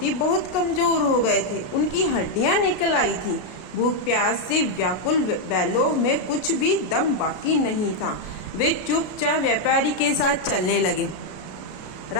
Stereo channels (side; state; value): right; late; 33 ms